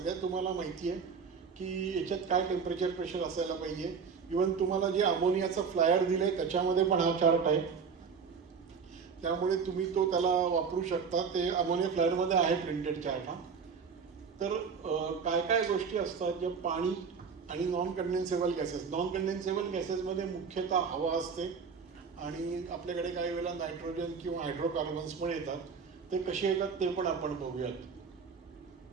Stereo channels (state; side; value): quieter; left; 5.9 dB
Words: तुम्हाला माहिती आहे की याच्यात काय टेम्परेचर प्रेशर असायला पाहिजे. इवन तुम्हाला जे अमोनियाचं फ्लायर दिलंय त्याच्यामध्ये पण हा चार्ट आहे, त्यामुळे तुम्ही तो त्याला वापरू शकता. ते अमोनिया फ्लायरमध्ये आहे प्रिंटेड चार्ट हा. तर काय काय गोष्टी असतात ज्या पाणी आणि नॉन कंडेन्सेबल गॅसेस. नॉन कंडेन्सेबल गॅसेसमध्ये मुख्यतः हवा असते आणि आपल्याकडे काही वेळेला नायट्रोजन किंवा हायड्रोकार्बन्स पण येतात. ते कसे येतात ते पण आपण बघूयात.